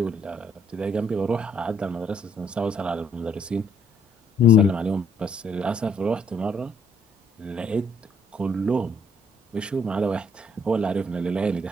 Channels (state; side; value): normal; both; correlation 0.67